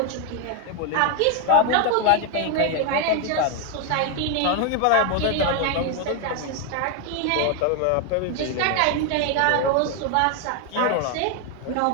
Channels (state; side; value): different; both; correlation 0.01